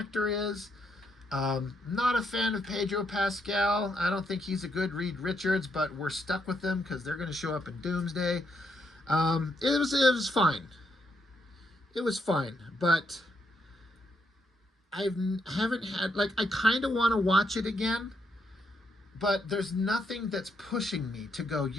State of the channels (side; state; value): both; normal; correlation 0.77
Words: is. Not a fan of Pedro Pascal. I don't think he's a good Reed Richards, but we're stuck with them because they're going to show up in Doomsday. It was fine. It was fine, but haven't had, like, I kind of want to watch it again, but there's nothing that's pushing me to go,